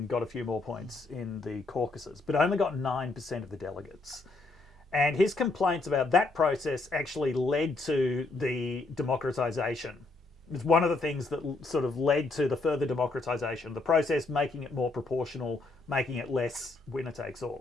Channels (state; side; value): quieter; right; 3.3 dB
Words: got a few more points in the caucuses, but only got 9% of the delegates. And his complaints about that process actually led to the democratisation. It's one of the things that sort of led to the further democratisation of the process, making it more proportional, making it less winner takes